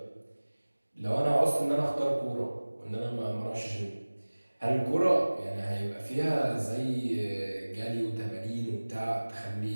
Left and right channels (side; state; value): both; inverted; correlation -1.00